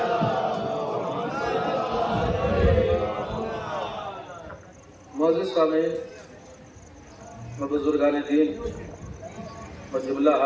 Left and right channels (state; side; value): identical; both; correlation 1.00